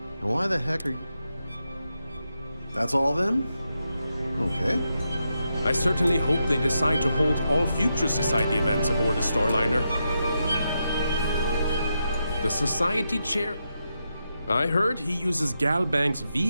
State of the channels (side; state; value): both; inverted; correlation -0.85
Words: Now why the heck are you... That's all then? Okay. I certainly hope they decide to hold all future Society events aboard the Starliner. The Society chair? I heard he uses Galbank's